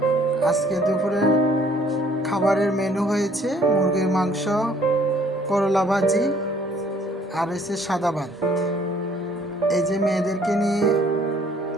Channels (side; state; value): both; normal; correlation 0.60